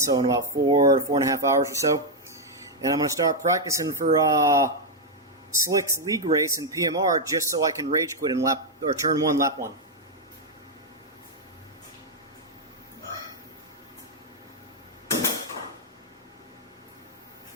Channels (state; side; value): normal; both; correlation 0.00